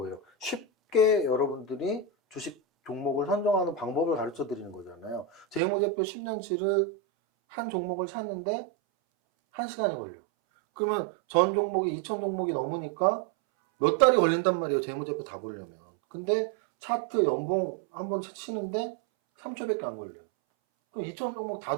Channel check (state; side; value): drops out; left; at 5.6 s